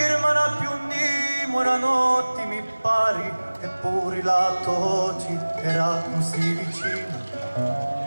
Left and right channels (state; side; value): inverted; both; correlation -1.00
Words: più dimora notti mi pari, eppure lato oggi era così vicina.